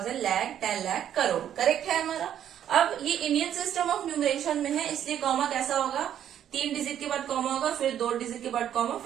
lakh, 10 lakh, crore, correct है हमारा। अब ये इंडियन सिस्टम ऑफ न्यूमरेशन में है, इसलिए कॉमा कैसा होगा, 3 डिजिट के बाद कॉमा होगा, फिर 2 डिजिट के बाद कॉमा,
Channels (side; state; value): left; quieter; 10.2 dB